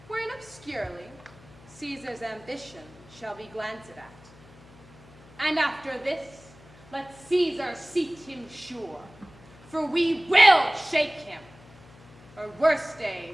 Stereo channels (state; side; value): noise; left; hum, 23 dB below the sound